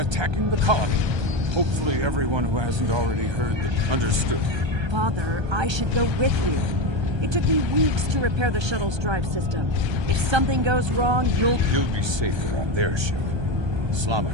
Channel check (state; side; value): late; left; 1.3 ms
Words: the colony. Hopefully everyone who hasn't already heard them understood. Father, I should go with you. It took me weeks to repair the shuttle's drive system. If something goes wrong, you'll be safer on their ship.